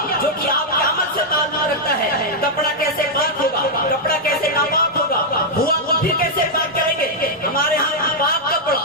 جو کہ آپ کے عمل سے تعلق رکھتا ہے۔ کپڑا کیسے پاک ہوگا، کپڑا کیسے ناپاک ہوگا، ہوا تو پھر کیسے پاک کریں گے۔ ہمارے ہاں پاک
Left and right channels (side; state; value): both; normal; correlation -0.03